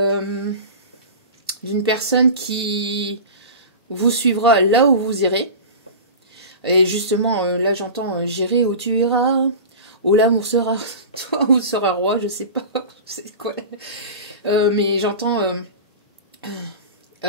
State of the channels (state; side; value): inverted; both; correlation -0.31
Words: personne qui vous suivra là où vous irez. Et justement, là j'entends j'irai où tu iras, où l'amour sera toi ou sera roi, je sais pas c'est quoi. Mais j'entends